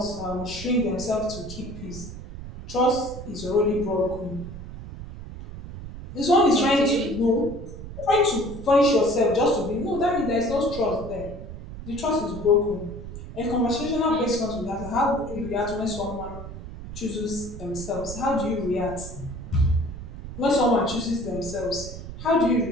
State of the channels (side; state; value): right; noise; rumble, 11 dB below the sound